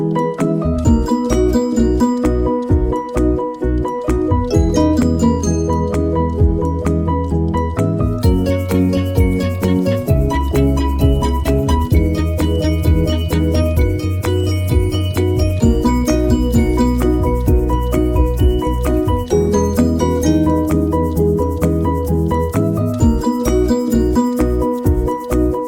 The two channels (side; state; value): both; identical; correlation 1.00